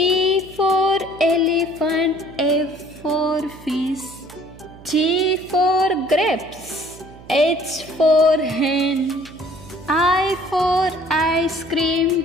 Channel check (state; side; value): noise; right; hum, 20 dB below the sound